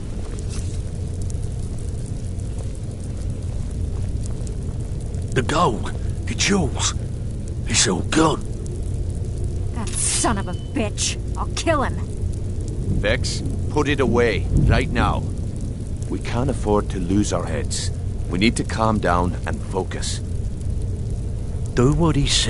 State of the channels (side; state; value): both; identical; correlation 1.00